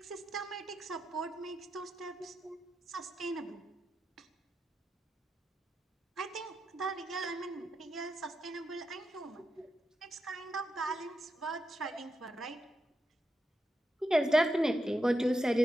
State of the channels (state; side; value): normal; both; correlation 0.86